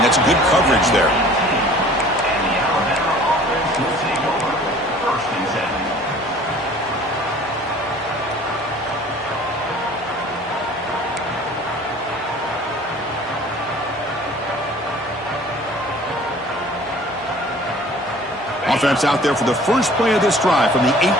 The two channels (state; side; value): normal; both; correlation 0.49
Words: That's good coverage there. Offense out there for the first play of this drive from the 18.